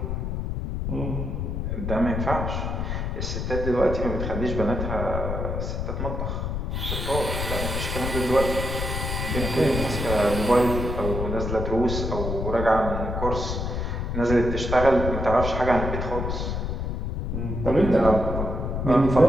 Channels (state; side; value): noise; left; rumble, 2 dB below the sound